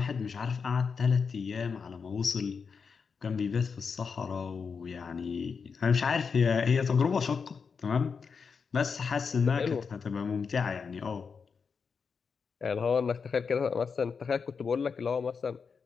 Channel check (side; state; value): right; quieter; 5.7 dB